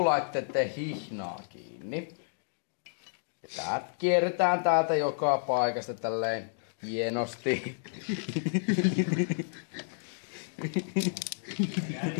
hihnaa kiinni. Ja tää kierretään täältä joka paikasta tälleen hienosti.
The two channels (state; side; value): silent; right; digital silence